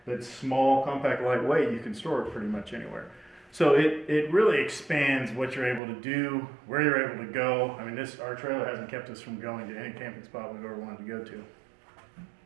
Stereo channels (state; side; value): drops out; left; at 5.8 s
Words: that's small, compact, lightweight, you can store it pretty much anywhere. So it really expands what you're able to do, where you're able to go. I mean, our trailer hasn't kept us from going to any camping spot we've ever wanted to go to.